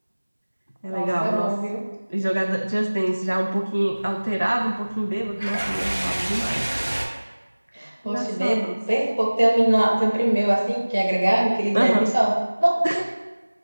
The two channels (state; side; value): inverted; both; correlation -1.00